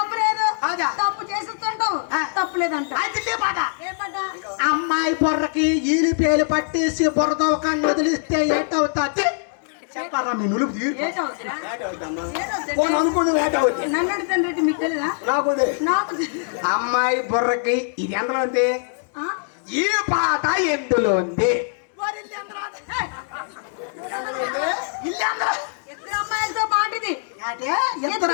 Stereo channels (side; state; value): right; silent; 59 dB below the other